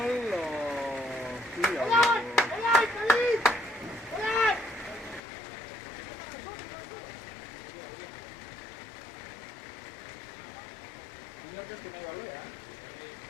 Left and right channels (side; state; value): right; drops out; at 5.2 s